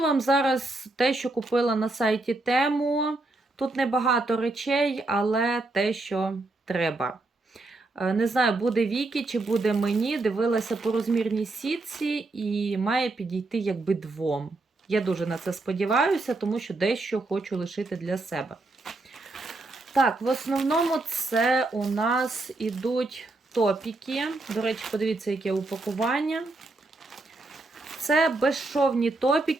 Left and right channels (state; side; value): quieter; left; 3.1 dB